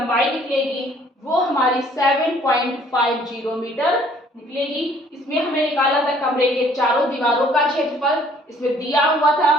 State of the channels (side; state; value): both; normal; correlation 0.59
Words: निकलेगी वो हमारी 7.50 मीटर निकलेगी। इसमें हमें निकाला था कमरे के चारों दीवारों का क्षेत्रफल, इसमें दिया हुआ था